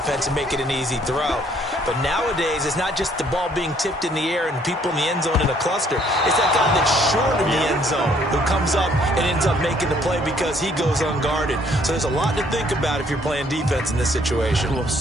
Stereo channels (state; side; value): normal; both; correlation 0.64